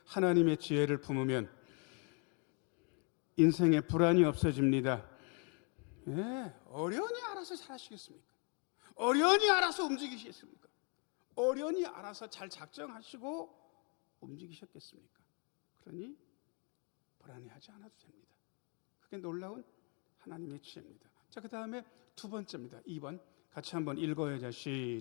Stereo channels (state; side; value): quieter; right; 36.8 dB